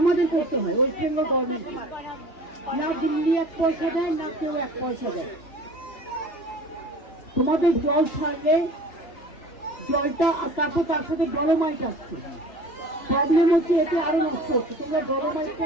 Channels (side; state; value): right; late; 2.9 ms